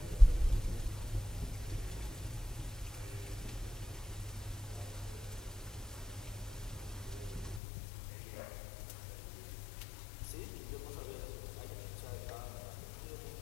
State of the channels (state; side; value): drops out; right; at 7.6 s